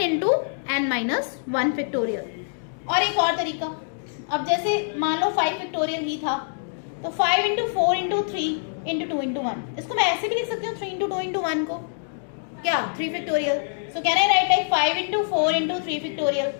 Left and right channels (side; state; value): right; silent; digital silence